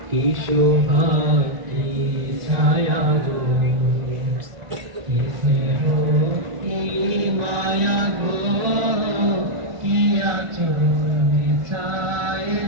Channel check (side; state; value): left; late; 1.5 ms